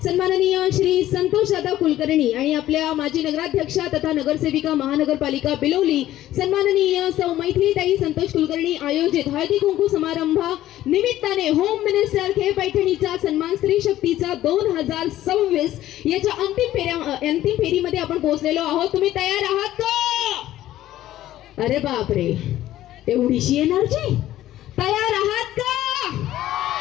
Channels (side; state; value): right; quieter; 13.8 dB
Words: सन्माननीय श्री संतोष दादा कुलकर्णी आणि आपल्या माजी नगराध्यक्षा तथा नगरसेविका महानगरपालिका बिलोली सन्माननीय सौ मैथिलीताई संतोष कुलकर्णी आयोजित हळदी कुंकू समारंभा निमित्ताने होम मिनिस्टर खे पैठणीचा सन्मान स्त्री शक्तीचा 2026 याच्या अंतिम फेरीमध्ये आपण पोहोचलेलो आहोत. तुम्ही तयार आहात का? अरे बापरे, एवढीशी एनर्जी! तयार आहात का?